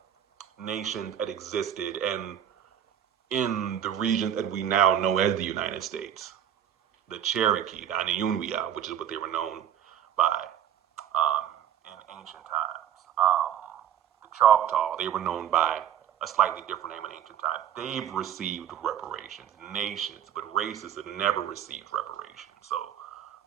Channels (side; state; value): left; quieter; 9.8 dB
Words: nations that existed and in the region that we now know as the United States. The Cherokee, the Aniunwia, which is what they were known by in ancient times. The Choctaw, they were known by a slightly different name in ancient times. They've received reparations, nations, but races have never received reparations. So